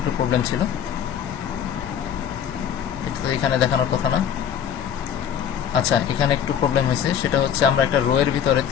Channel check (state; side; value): quieter; right; 8.8 dB